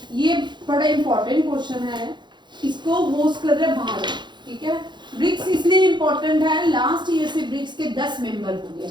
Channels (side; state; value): left; late; 0.22 ms